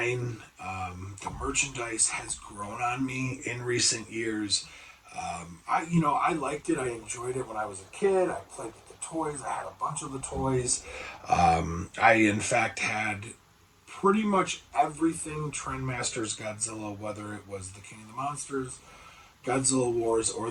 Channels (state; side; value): identical; both; correlation 1.00